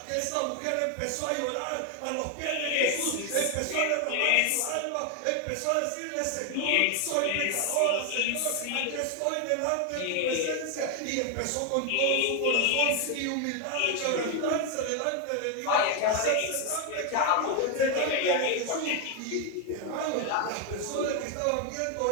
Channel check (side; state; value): both; different; correlation 0.01